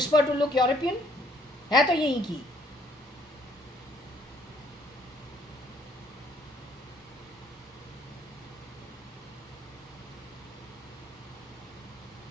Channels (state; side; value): normal; both; correlation 0.64